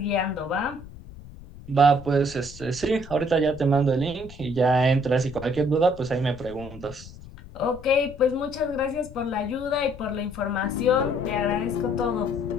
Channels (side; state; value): left; noise; rumble, 16 dB below the sound